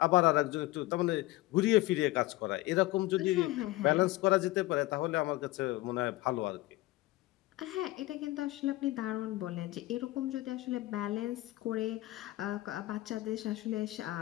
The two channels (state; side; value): quieter; right; 18.4 dB